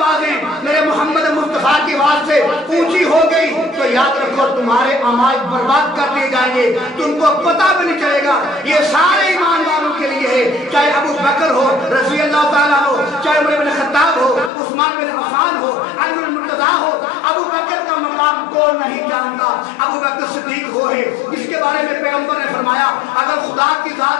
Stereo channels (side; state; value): right; drops out; at 14.5 s